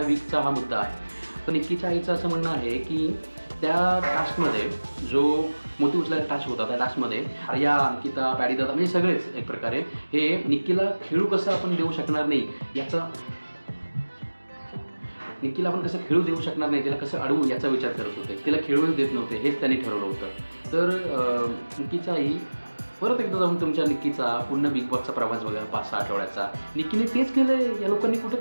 वीकचा हा मुद्दा आहे. तर निक्कीच्या आईचं असं म्हणणं आहे की त्या टास्कमध्ये जो मोती उचलायचा टास्क होता, त्या टास्कमध्ये आर्या, अंकिता, पॅडी दादा म्हणजे सगळेच एक प्रकारे हे निक्कीला खेळू कसं आपण देऊ शकणार नाही निक्कीला आपण कसं खेळू देऊ शकणार नाही, तिला कसं अडवू याचा विचार करत होते. तिला खेळूच देत नव्हते, हेच त्यांनी ठरवलं होतं. तर निक्कीच्या आई, परत एकदा जाऊन तुमच्या निक्कीचा पूर्ण बिग बॉसचा प्रवास बघा 5-6 आठवड्याचा. निक्कीने तेच केलंय. या लोकांनी कुठं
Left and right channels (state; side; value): inverted; both; correlation -1.00